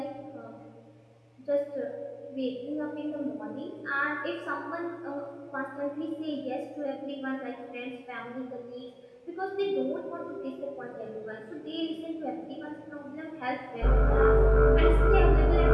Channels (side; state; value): both; identical; correlation 1.00